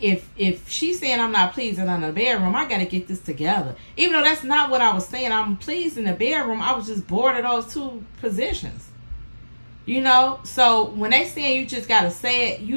if she's saying I'm not pleasing in the bedroom, I gotta get this together. Even though that's not what I was saying, I'm pleased in the bedroom. I was just bored of those two positions. You know, so when they saying you just gotta say it,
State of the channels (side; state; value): both; inverted; correlation -1.00